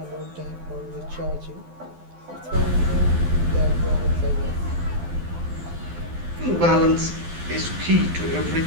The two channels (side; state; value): left; late; 12 ms